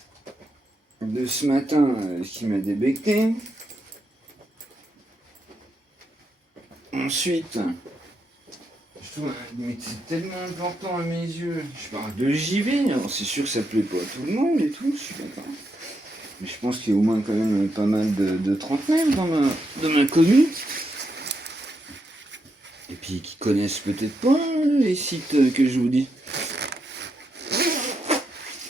de ce matin qui m'a débecté. Ensuite, mais c'est tellement important à mes yeux. Je parle de JV, alors c'est sûr que ça plaît pas à tout le monde et tout, je suis d'accord. Mais je pense qu'il y a au moins quand même pas mal de trentenaires dans ma commune. Et puis qui connaissent peut-être pas les sites que je vous dis.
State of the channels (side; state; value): both; normal; correlation 0.82